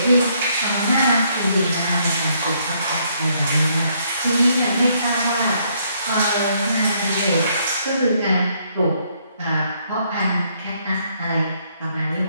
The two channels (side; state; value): both; inverted; correlation -0.70